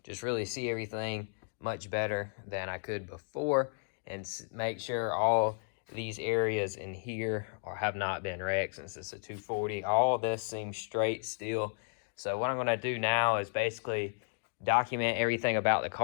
just really see everything much better than I could before, and make sure all these areas in here have not been wrecked since it's a 240. All of this seems straight still. So what I'm going to do now is basically document everything about the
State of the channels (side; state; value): right; silent; digital silence